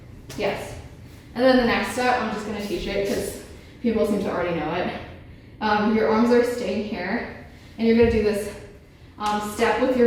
Yes. And then the next step, I'm just going to teach it because people seem to already know it. Your arms are staying here, and you're going to do this step with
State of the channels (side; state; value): both; identical; correlation 1.00